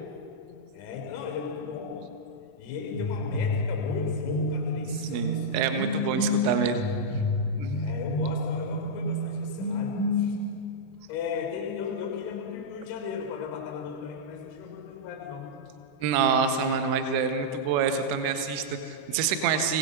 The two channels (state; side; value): late; right; 21 ms